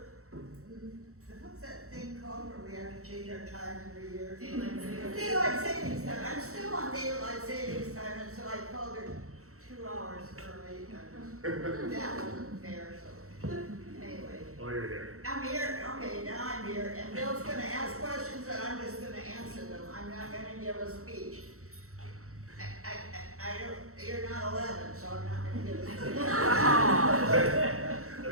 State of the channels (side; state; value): left; late; 0.64 ms